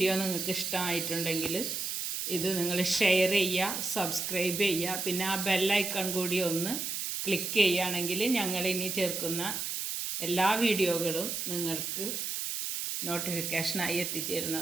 നിങ്ങൾക്ക് ഇഷ്ടമായിട്ടുണ്ടെങ്കിൽ ഇത് നിങ്ങൾ ഷെയർ ചെയ്യുക, സബ്സ്ക്രൈബ് ചെയ്യുക. പിന്നെ ആ ബെല്ലൈക്കൺ കൂടി ഒന്ന് ക്ലിക്ക് ചെയ്യുകയാണെങ്കിൽ ഞങ്ങളിനി ചേർക്കുന്ന എല്ലാ വീഡിയോകളും നിങ്ങൾക്ക് നോട്ടിഫിക്കേഷനായി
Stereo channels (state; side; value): noise; right; hiss, 3 dB below the sound